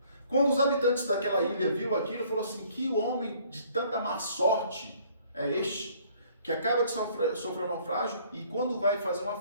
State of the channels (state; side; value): inverted; both; correlation -0.59